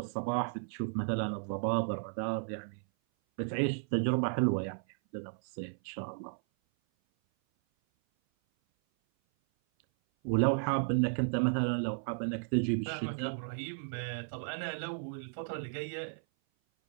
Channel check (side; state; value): left; silent; 55 dB below the other